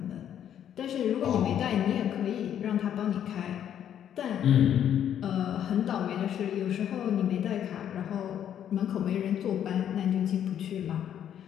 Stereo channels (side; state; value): right; quieter; 9.8 dB